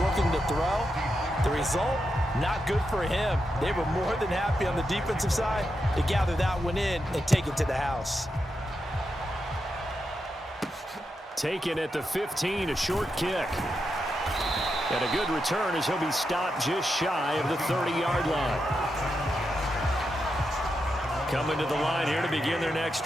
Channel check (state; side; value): normal; both; correlation 0.86